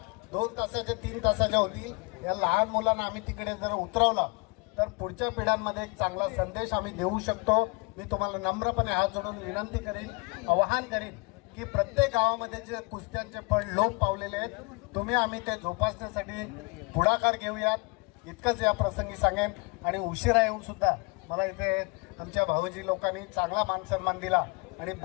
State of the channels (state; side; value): quieter; right; 28.3 dB